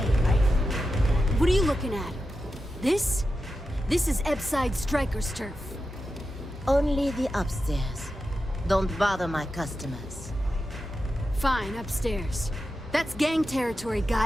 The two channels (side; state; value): both; normal; correlation 0.90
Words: right? What are you looking at? This? This is Epside Striker's turf. Only the upstairs. Don't bother my customers. Fine, upstairs. That's gang territory,